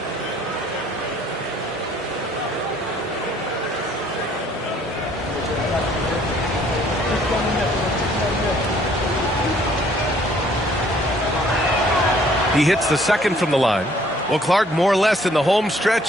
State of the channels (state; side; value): normal; both; correlation 0.60